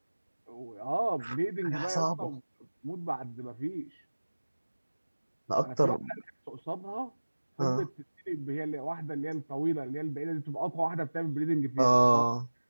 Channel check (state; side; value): inverted; both; correlation -1.00